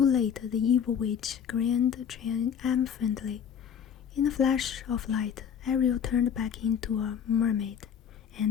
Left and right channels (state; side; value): quieter; right; 8.1 dB